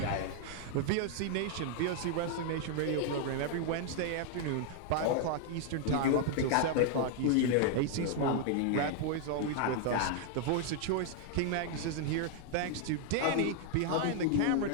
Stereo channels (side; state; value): both; different; correlation 0.00